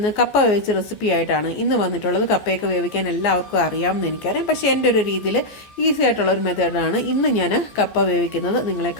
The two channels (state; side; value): late; right; 14 ms